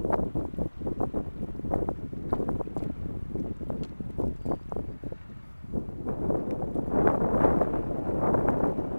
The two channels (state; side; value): inverted; both; correlation -1.00